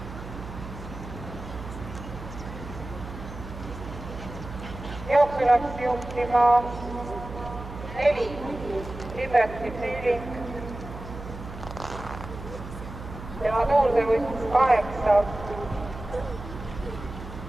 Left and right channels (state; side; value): noise; right; hum, 11 dB below the sound